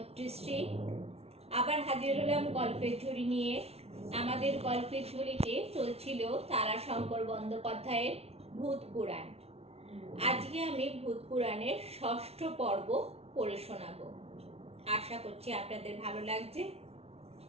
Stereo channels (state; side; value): late; left; 0.30 ms